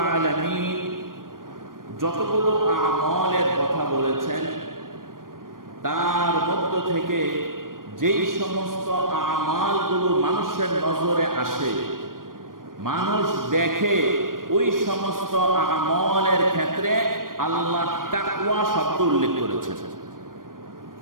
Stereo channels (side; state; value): left; late; 0.91 ms